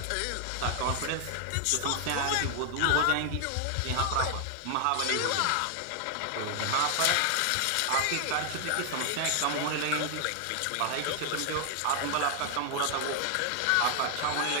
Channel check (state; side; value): different; both; correlation 0.00